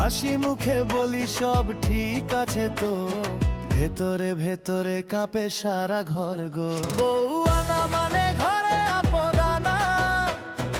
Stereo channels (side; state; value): both; identical; correlation 1.00